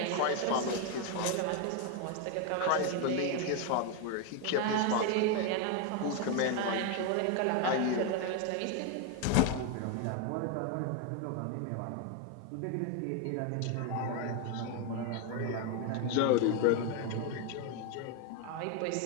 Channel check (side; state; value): both; different; correlation 0.01